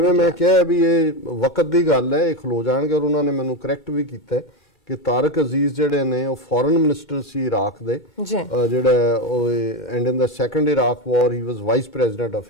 ਮੈਂ ਕਿਹਾ ਵੀ ਇਹ ਵਕਤ ਦੀ ਗੱਲ ਹੈ, ਇਹ ਖਲੋ ਜਾਣਗੇ। ਔਰ ਉਹਨਾਂ ਨੇ ਮੈਨੂੰ ਕਰੈਕਟ ਵੀ ਕੀਤਾ ਕਿ ਤਾਰਕ ਅਜ਼ੀਜ਼ ਜਿਹੜੇ ਨੇ ਉਹ ਫੋਰਨ ਮਿਨਿਸਟਰ ਸੀ ਇਰਾਕ ਦੇ, ਜਿਹੜਾ ਉਹ and in the second Iraq war he was vice president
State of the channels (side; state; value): both; normal; correlation 0.14